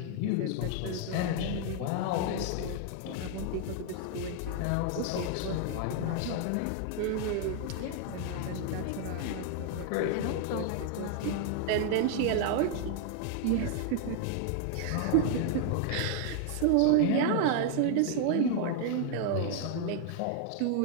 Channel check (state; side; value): different; both; correlation 0.00